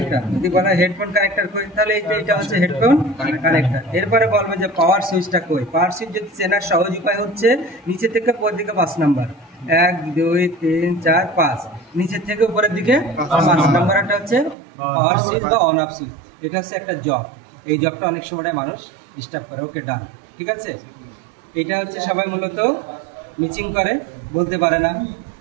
যদি বলা হেডফোন কানেক্টর কই, তাহলে এইটা হচ্ছে হেডফোন কানেক্টর। এরপরে বলবো যে পাওয়ার সুইচটা কই, পাওয়ার সুইচ যদি চেনার সহজ উপায় হচ্ছে নিচে থেকে উপরের দিকে 5 নাম্বার, 1 2 3 4 5, নিচের থেকে উপরের দিকে 5 নাম্বারটা হচ্ছে পাওয়ার সুইচ বা অন অফ সুইচ। এটা হচ্ছে একটা জব, এই জবটা অনেক সময় মানুষ ডিস্টার্ব করে, ওকে ডান, ঠিক আছে। এটা হচ্ছে সবাই মূলত মিচিং করে, বলতে পারে না,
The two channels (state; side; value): drops out; left; at 14.6 s